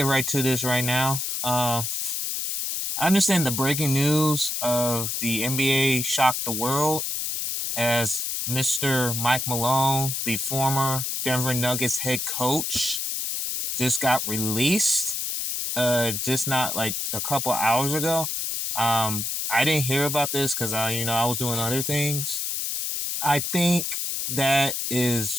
right to this right now. I understand the breaking news of the NBA shocked the world as Mr. Mike Malone, the former Denver Nuggets head coach, just got released. Just not like a couple hours ago. I didn't hear about this because I was doing other things. I think that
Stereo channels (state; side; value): noise; left; hiss, 2 dB below the sound